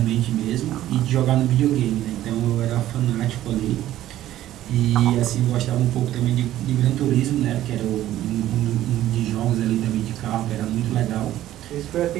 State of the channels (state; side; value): quieter; left; 13.5 dB